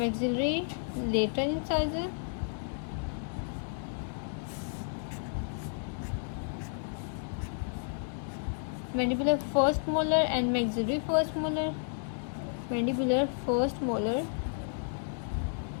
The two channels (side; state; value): right; silent; digital silence